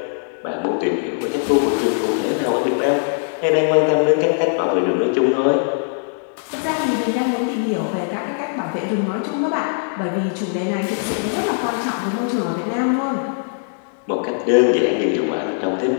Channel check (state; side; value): silent; right; digital silence